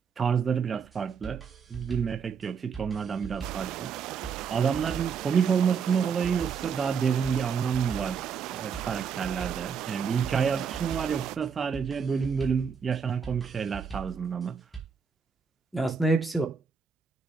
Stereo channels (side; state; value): left; quieter; 6.2 dB